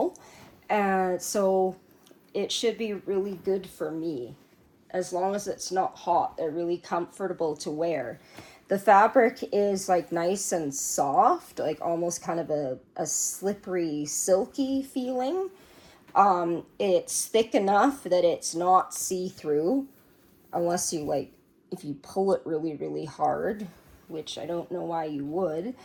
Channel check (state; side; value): identical; both; correlation 1.00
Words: And so it should be really good for me. As long as it's not hot, they're really comfortable to wear. The fabric is like nice and soft, like almost kind of a slippery, silky feeling. It's thick enough that it's not see-through, unless you like, if you pull it really, really hard, which I don't know why you would.